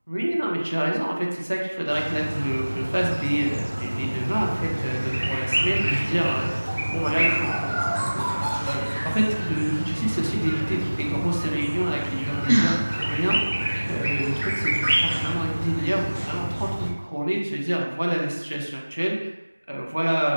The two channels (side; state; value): both; inverted; correlation -1.00